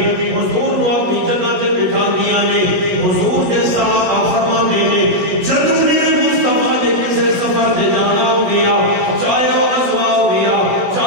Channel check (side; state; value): left; late; 16 ms